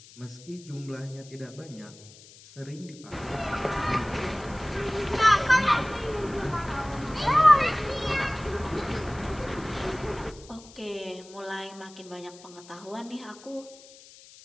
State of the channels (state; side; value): noise; left; hiss, 21 dB below the sound